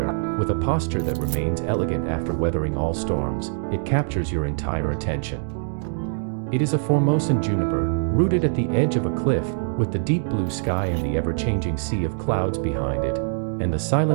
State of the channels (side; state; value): left; silent; digital silence